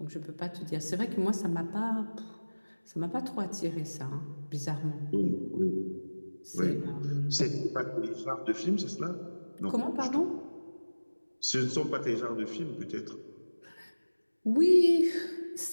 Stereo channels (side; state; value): both; inverted; correlation -1.00